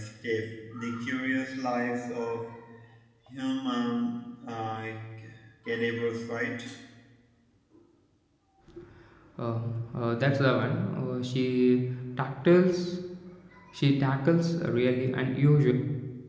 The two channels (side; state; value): both; identical; correlation 1.00